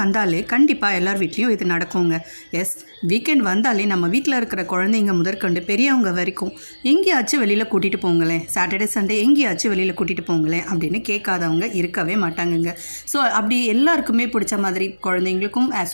கண்டிப்பாக எல்லார் வீட்லேயும் இது நடக்குங்க. எஸ், வீக்கெண்ட் வந்தாலே நம்ம வீட்டில் இருக்கிற குழந்தைங்க முதற்கொண்டு பெரியவங்க வரைக்கும் எங்கேயாச்சும் வெளியில் கூட்டிகிட்டு போங்களேன், சாட்டர்டே சண்டே எங்கேயாச்சும் வெளியில் கூட்டிகிட்டு போங்களேன் அப்படின்னு கேட்காதவங்க இருக்கவே மாட்டாங்கங்க. ஸோ அப்படி எல்லாருக்குமே பிடிச்ச மாதிரி, குழந்தைங்களுக்கும்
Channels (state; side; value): inverted; both; correlation -1.00